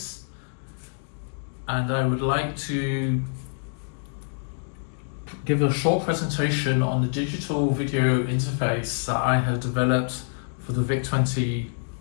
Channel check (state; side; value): silent; right; digital silence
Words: and I would like to give a short presentation on the digital video interface that I have developed for the VIC20